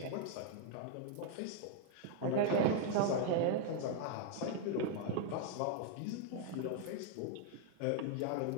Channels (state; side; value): different; both; correlation 0.00